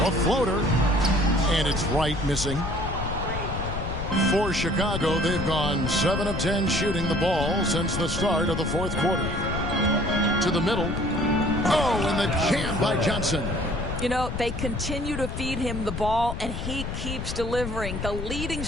A floater, and it's right missing. For Chicago, they've gone 7 of 10 shooting the ball since the start of the fourth quarter. To the middle. Oh, and the jam by Johnson. You know, they continue to feed him the ball, and he keeps delivering. The leading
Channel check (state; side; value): noise; left; rumble, 5 dB below the sound